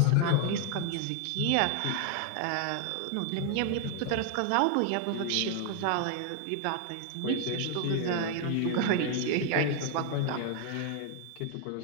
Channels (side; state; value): both; different; correlation 0.00